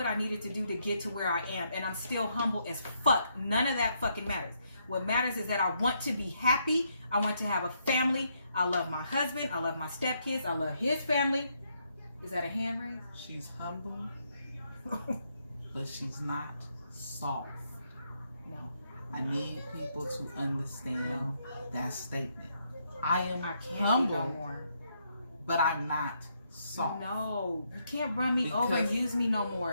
I needed to do to get to where I am, and I'm still humble as fuck. None of that fucking matters. What matters is that I want to be happy. I want to have a family. I love my husband. I love my stepkids. I love his family. Is that a hand raise? She's humble, but she's not soft. No. I need people to understand that statement. I can't humble, be no more. but I'm not soft. No, you can't run me Because over and use me no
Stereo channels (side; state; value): both; inverted; correlation -0.76